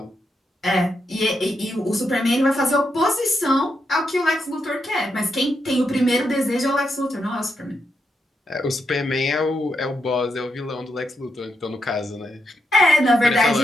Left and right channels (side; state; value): both; normal; correlation 0.82